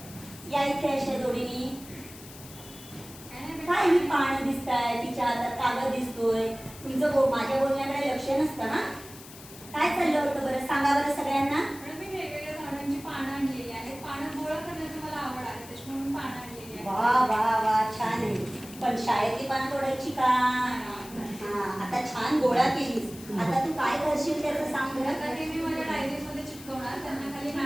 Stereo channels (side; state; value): left; noise; hiss, 17 dB below the sound